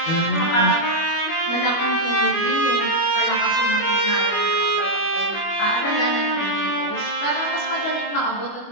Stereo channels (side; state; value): right; late; 25 ms